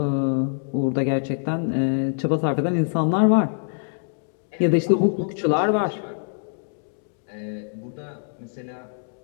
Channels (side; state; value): right; silent; digital silence